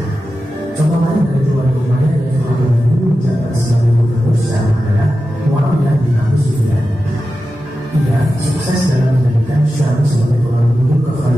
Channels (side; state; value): both; normal; correlation 0.92